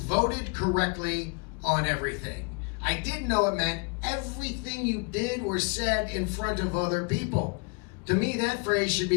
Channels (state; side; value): quieter; right; 33.1 dB